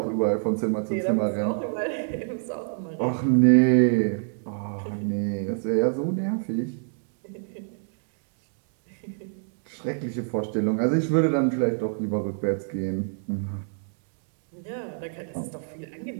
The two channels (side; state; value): left; silent; digital silence